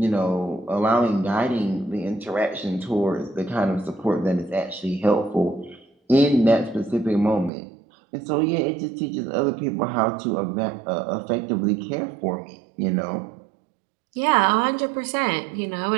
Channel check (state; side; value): drops out; left; at 7.5 s